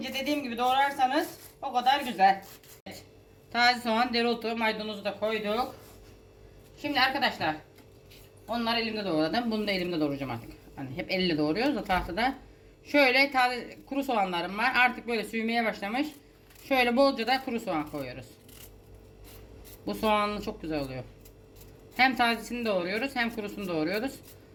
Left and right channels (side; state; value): both; identical; correlation 1.00